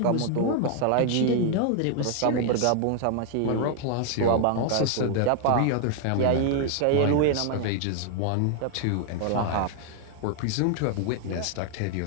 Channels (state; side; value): different; both; correlation 0.00